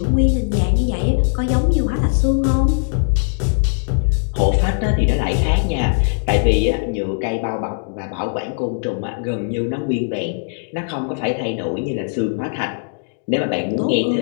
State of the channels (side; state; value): right; silent; digital silence